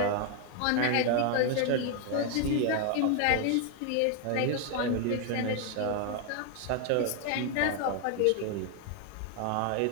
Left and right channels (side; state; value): both; different; correlation 0.01